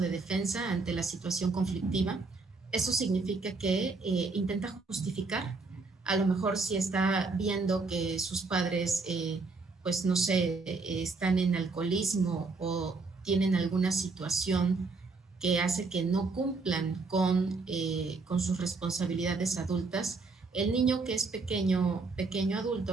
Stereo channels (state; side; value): quieter; left; 4.0 dB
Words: defensa ante la situación conflictiva. Eso significa que intenta justificar, a lo mejor si está viendo que sus padres, pues no sé, están en alcoholismo o tienen alguna situación que hace que no cumplan con sus responsabilidades adultas, el niño que es pequeño